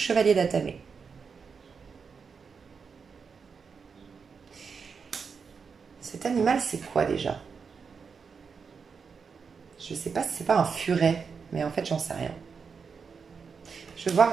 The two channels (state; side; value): quieter; left; 5.7 dB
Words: d'Atamé. Cet animal, c'est quoi déjà? Je sais pas si c'est pas un furet, mais en fait, j'en sais rien. Je veux voir...